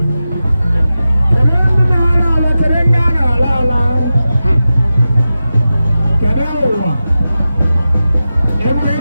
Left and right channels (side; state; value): both; inverted; correlation -0.93